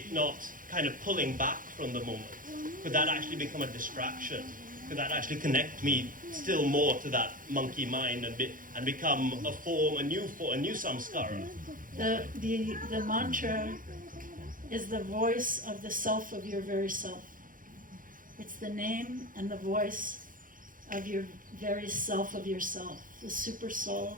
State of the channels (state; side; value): late; left; 0.40 ms